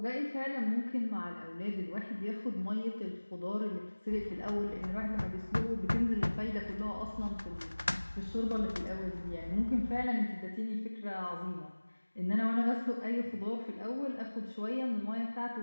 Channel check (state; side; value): inverted; both; correlation -1.00